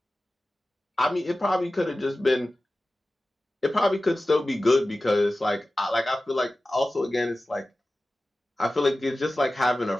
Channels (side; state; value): both; normal; correlation 0.96